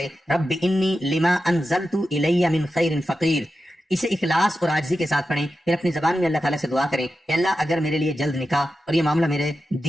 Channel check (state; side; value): normal; both; correlation 0.91